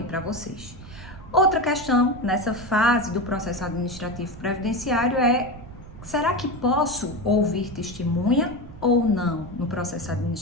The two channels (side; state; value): right; noise; rumble, 16 dB below the sound